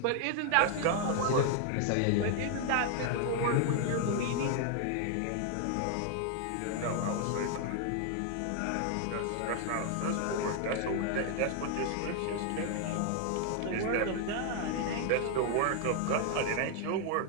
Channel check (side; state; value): both; different; correlation 0.00